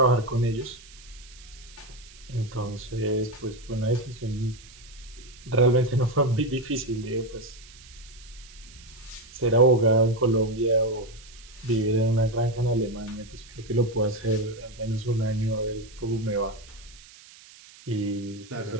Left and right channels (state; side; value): noise; right; hiss, 21 dB below the sound